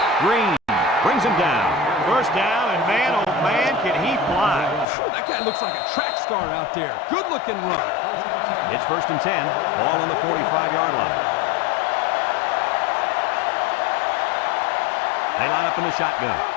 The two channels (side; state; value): right; drops out; at 4.9 s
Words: Green brings him down. First down, and man, oh man, can he fly. That guy looks like a track star out there. Good-looking run. It's 1st and 10. Ball on the 45-yard line. They line up in the shotgun.